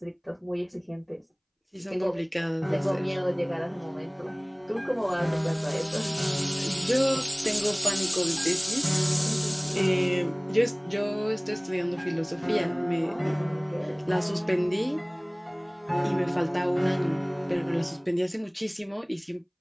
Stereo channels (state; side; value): identical; both; correlation 1.00